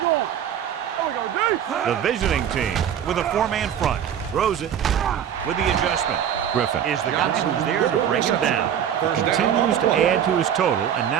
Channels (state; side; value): quieter; left; 9.3 dB